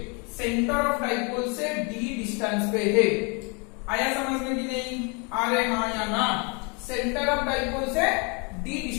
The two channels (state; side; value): quieter; right; 32.5 dB